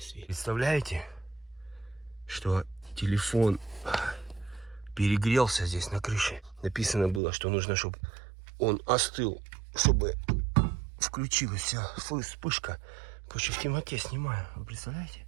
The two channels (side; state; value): left; drops out; at 7.2 s